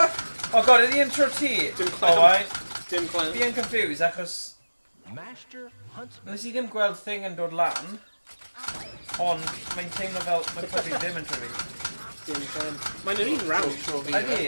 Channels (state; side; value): inverted; both; correlation -1.00